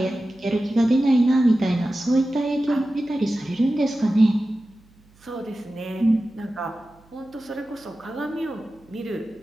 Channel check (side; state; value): right; noise; hum, 29 dB below the sound